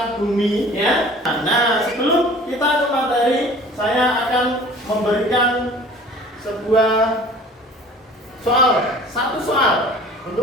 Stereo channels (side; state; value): both; normal; correlation 0.46